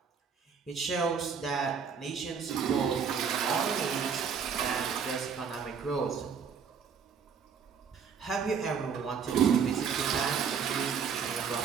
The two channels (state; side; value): quieter; left; 6.6 dB